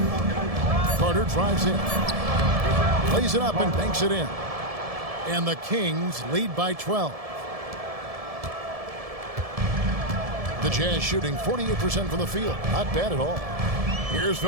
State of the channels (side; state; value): left; late; 1.7 ms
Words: Carter drives in. Plays it up and banks it in. And the Kings lead by 12. The Jazz shooting 48% from the field. Not bad at all. Here's